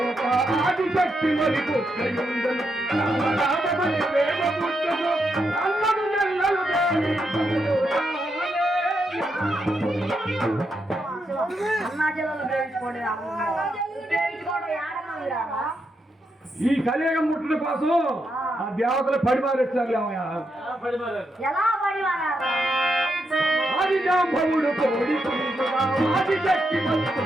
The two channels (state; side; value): normal; both; correlation 0.82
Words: ఆది శక్తి మరి పుట్టయుండను రామమని ప్రేమ పుట్టను అన్నడు నెల్లలు ఈ కలియుగం ముట్టడం కోసం ఆ దేవతలు పడిమారేస్తారు ఆది జాంబవుడు కోడి ఆది శక్తి మరి